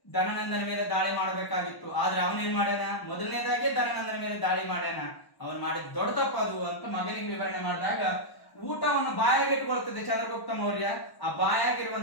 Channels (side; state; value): right; late; 1.1 ms